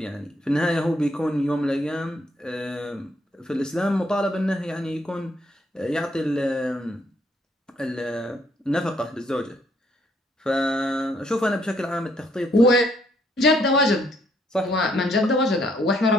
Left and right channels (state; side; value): normal; both; correlation 0.69